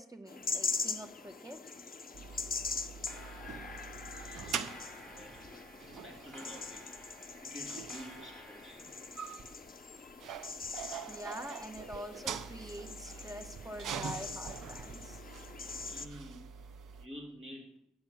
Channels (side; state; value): both; normal; correlation 0.52